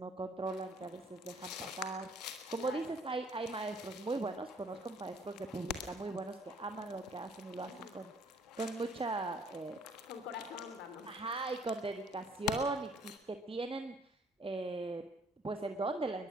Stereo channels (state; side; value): normal; both; correlation 0.59